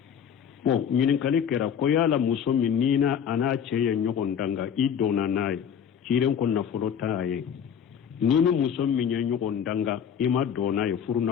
bon ñinin kali kera ko yala muso min nina ana ceye ñogon danga i dona naye ciren ko nafolo taye nini muso min ye ñogon danga ima dona ye furu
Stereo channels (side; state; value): right; quieter; 8.1 dB